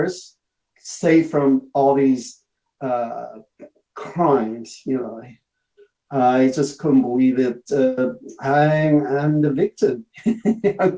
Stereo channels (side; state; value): both; identical; correlation 1.00